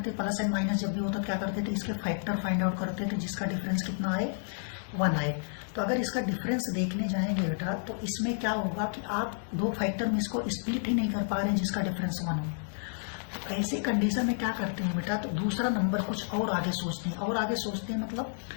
प्लस एंड माइनस जब भी होता क्या करते थे, इसके फैक्टर फाइंड आउट करते थे, जिसका डिफरेंस कितना आए 1 आए। तो अगर इसका डिफरेंस देखने जाएंगे बेटा तो इसमें क्या होगा कि आप दो फैक्टर में इसको स्प्लिट ही नहीं कर पा रहे हैं जिसका डिफरेंस 1 हो। तो ऐसी कंडीशन में क्या करते हैं बेटा, तो दूसरा नंबर कुछ और आगे सोचते हैं। और आगे सोचते हैं मतलब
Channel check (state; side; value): silent; right; 57 dB below the other